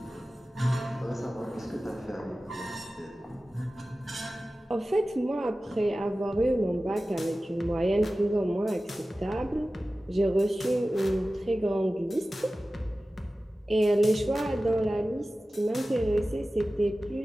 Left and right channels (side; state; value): both; normal; correlation 0.96